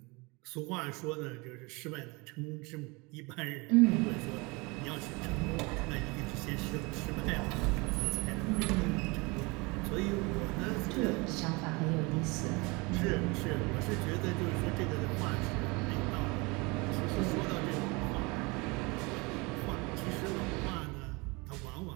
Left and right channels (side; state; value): left; quieter; 26.6 dB